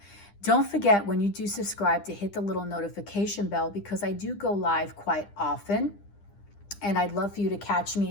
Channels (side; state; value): right; late; 9.9 ms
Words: Don't forget, when you do subscribe, to hit the little notification bell, because I do go live quite often, and I'd love for you to catch